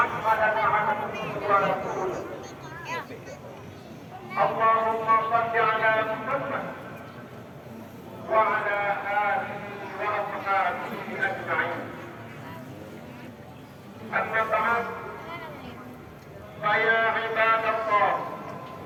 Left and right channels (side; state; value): both; identical; correlation 1.00